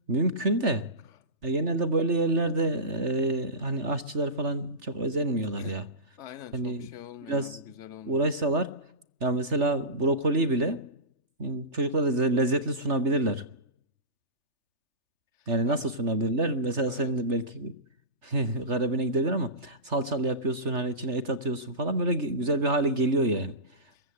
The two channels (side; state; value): left; late; 3.3 ms